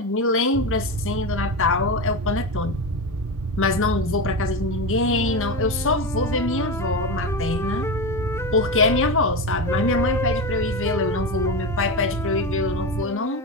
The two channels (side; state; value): both; normal; correlation 0.18